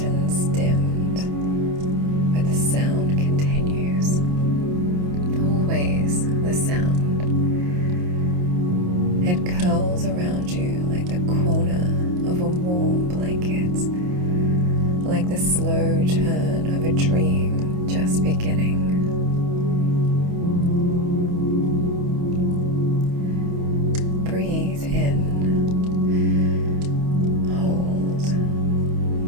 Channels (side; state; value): left; late; 28 ms